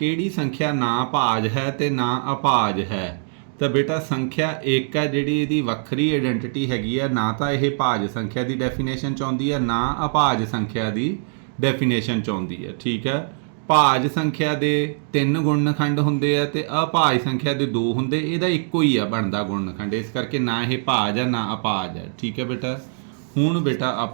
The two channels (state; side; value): silent; left; digital silence